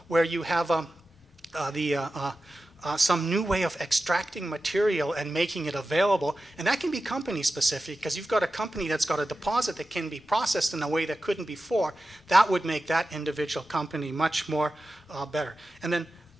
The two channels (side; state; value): both; normal; correlation 0.93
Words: where you have some new way of extracting material and making it available. And that can be company specific, because you've got a company that's got a deposit that can be processed in a way that couldn't before. That would make that individual company much more better. And then